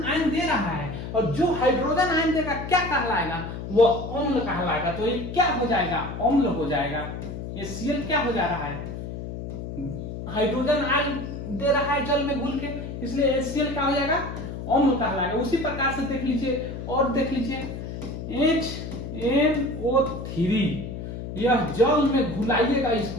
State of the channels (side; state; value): left; noise; hum, 8 dB below the sound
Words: आयन दे रहा है, और जो हाइड्रोजन आयन देगा क्या कहलाएगा? वो अम्ल कहलाएगा। तो ये क्या हो जाएगा? अम्ल हो जाएगा। ये Cl क्या हो जा रहा है? हाइड्रोजन आयन दे रहा है जल में घुल के, इसलिए HCl क्या हो जाएगा? अम्ल कहलाएगा। उसी प्रकार से देख लीजिए, और देख लीजिए HNO3, यह जल में घुलाइएगा